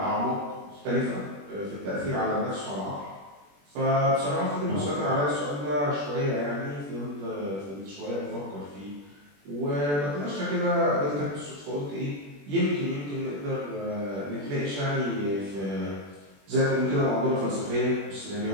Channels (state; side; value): late; left; 21 ms